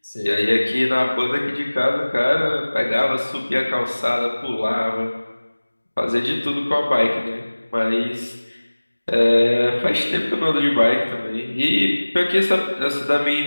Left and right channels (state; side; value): inverted; both; correlation -1.00